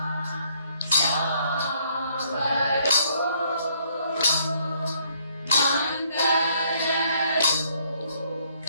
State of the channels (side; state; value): both; inverted; correlation -0.67